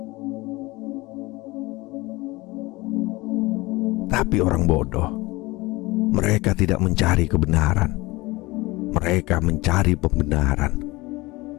Tapi orang bodoh, mereka tidak mencari kebenaran, mereka mencari pembenaran.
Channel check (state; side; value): quieter; right; 21.8 dB